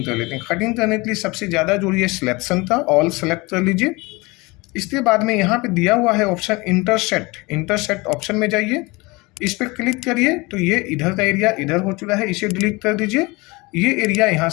कर लेते हैं। कटिंग करने के लिए सबसे ज़्यादा जरूरी है सिलेक्शन का, ऑल सेलेक्ट कर लीजिए। इसके बाद में यहाँ पे दिया हुआ है ऑप्शन इंटरसेक्ट ऑप्शन में जाइए, इस पर क्लिक करिए तो ये इधर का एरिया इधर हो चुका है, इसे डिलीट कर दीजिए। ये एरिया यहाँ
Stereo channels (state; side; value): quieter; right; 24.4 dB